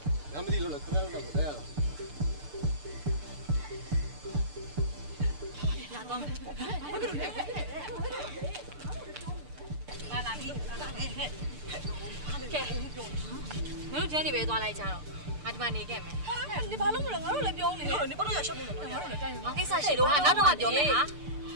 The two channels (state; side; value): late; left; 6.8 ms